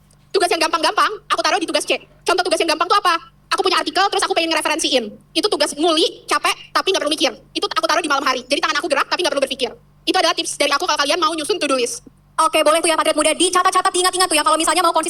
Tugas yang gampang-gampang aku taruh di tugas C. Contoh tugas yang gampang tuh apa? Aku punya artikel terus aku pengen ngereferensiin. Itu tugas nguli, capek, tapi nggak perlu mikir. Itu aku taruh di malam hari. Jadi tangan aku gerak tapi nggak perlu berpikir. Itu adalah tips dari aku kalau kalian mau nyusun to-do list. Oke, boleh tuh ya Patriot Muda dicatat-catat, diingat-ingat tuh ya kalau misalnya mau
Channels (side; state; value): both; identical; correlation 1.00